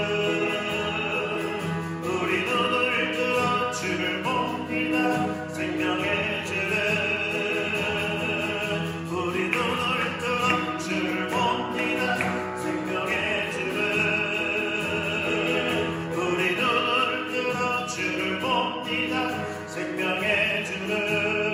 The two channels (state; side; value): identical; both; correlation 1.00